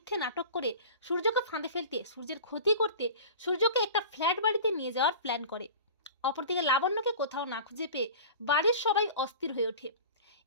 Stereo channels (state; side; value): inverted; both; correlation -0.37